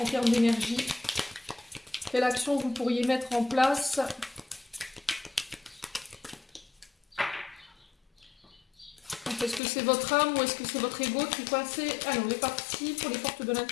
termes d'énergie. Quelle action vous pourriez mettre en place? Est-ce que c'est votre âme ou est-ce que c'est votre ego qui est coincé? Allez, on est parti pour les portes de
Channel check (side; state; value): right; drops out; at 9.6 s